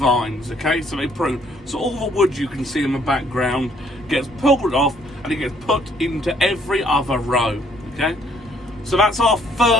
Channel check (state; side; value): normal; both; correlation 0.65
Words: okay? So they prune. So all the wood you can see in the background gets pulled off and it gets put into every other row, okay? So that's our